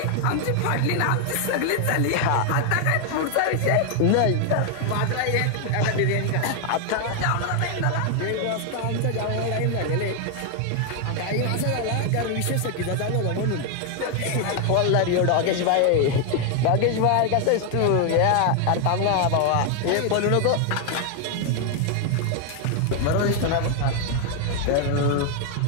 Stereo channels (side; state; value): both; different; correlation 0.00